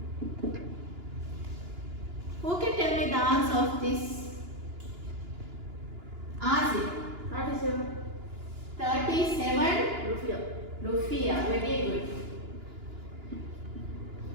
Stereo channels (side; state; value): left; late; 2.9 ms